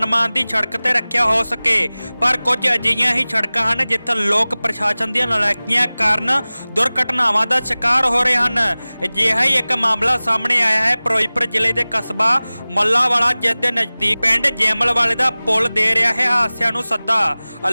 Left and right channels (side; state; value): both; inverted; correlation -0.99